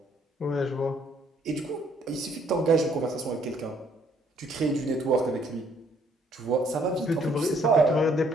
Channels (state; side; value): normal; both; correlation 0.65